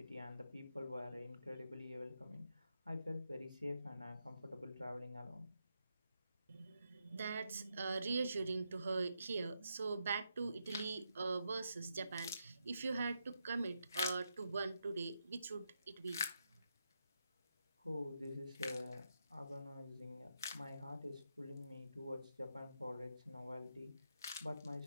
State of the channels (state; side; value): inverted; both; correlation -0.83